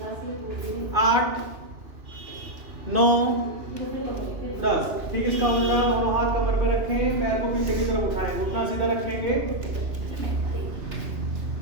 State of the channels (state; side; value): late; left; 2.9 ms